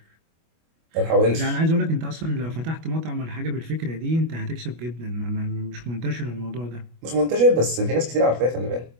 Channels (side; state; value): left; late; 25 ms